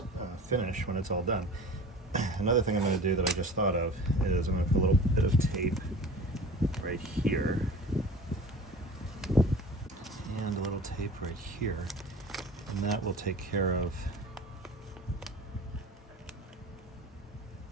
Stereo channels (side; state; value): both; normal; correlation 0.40